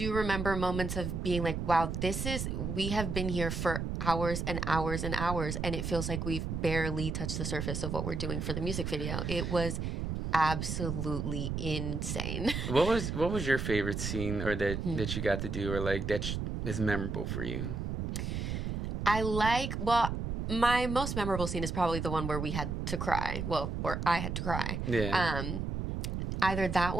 remember moments of being wow, we have been here for hours and hours and hours, and it feels like we've barely touched the surface of what we're doing for the music video. It was absolutely insane. What was your favorite scene or that you got to do or that is memorable for you? My most memorable scene is probably the one where we had to cry. Well, where I had to cry. Yeah. Either that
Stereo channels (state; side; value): noise; right; rumble, 3 dB below the sound